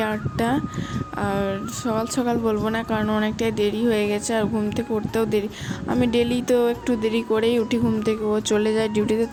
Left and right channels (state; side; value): identical; both; correlation 1.00